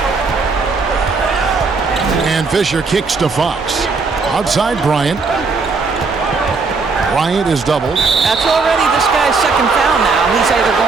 And Fisher kicks to Fox. Outside Bryant. Bryant is doubled. That's already this guy's second foul now. He's either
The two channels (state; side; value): quieter; left; 4.3 dB